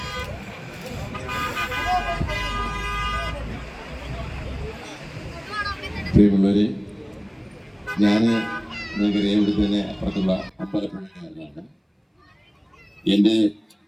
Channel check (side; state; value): both; identical; correlation 1.00